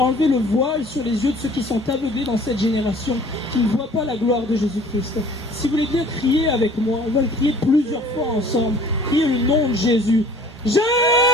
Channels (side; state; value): both; normal; correlation 0.51